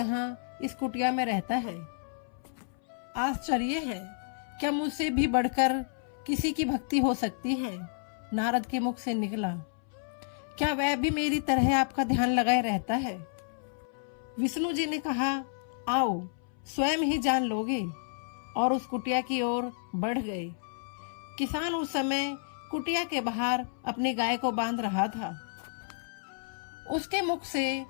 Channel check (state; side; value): silent; right; 57 dB below the other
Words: इस कुटिया में रहता है। आश्चर्य है, क्या मुझसे भी बढ़कर किसी की भक्ति हो सकती है। नारद के मुख से निकला, क्या वह भी मेरी तरह आपका ध्यान लगाए रहता है। विष्णु जी ने कहा, आओ स्वयं ही जान लोगे, और उस कुटिया की ओर बढ़ गए। किसान उस समय कुटिया के बाहर अपनी गाय को बांध रहा था। उसके मुख से